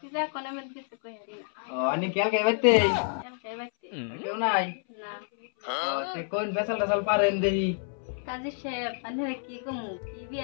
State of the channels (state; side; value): silent; right; 59 dB below the other